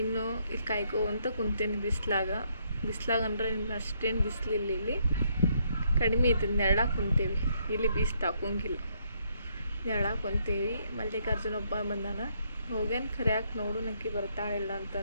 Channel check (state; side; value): inverted; both; correlation -0.72